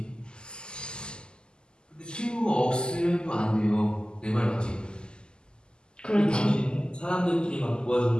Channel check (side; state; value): right; late; 0.047 ms